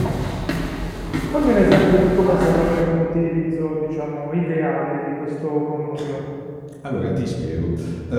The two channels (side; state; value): both; identical; correlation 1.00